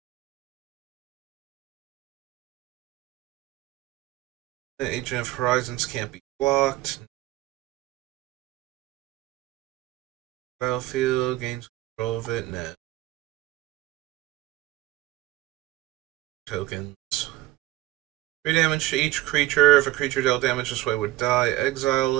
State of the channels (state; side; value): quieter; left; 16.5 dB